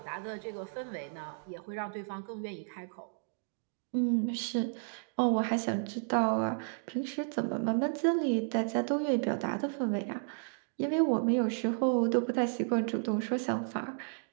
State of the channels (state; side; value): silent; left; digital silence